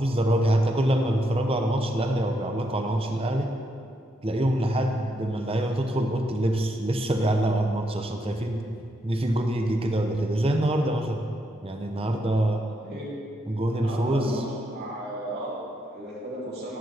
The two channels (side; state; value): both; normal; correlation 0.79